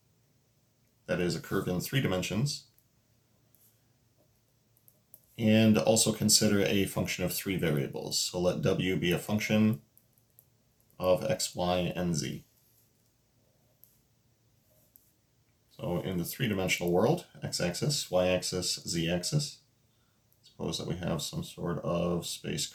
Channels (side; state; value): both; identical; correlation 1.00